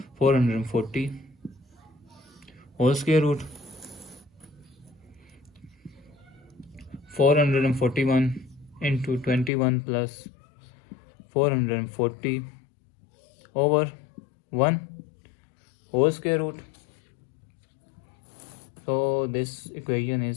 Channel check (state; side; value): drops out; right; at 9.5 s